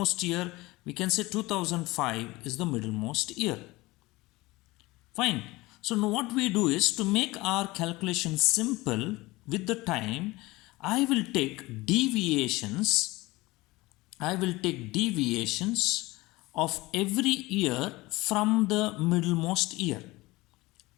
year? We can say 2005 is the middlemost year. Fine. So now what we do is, to make our calculation simple with the time, I will take deviations. I will take deviations of every year from the middlemost year.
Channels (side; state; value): right; quieter; 20.9 dB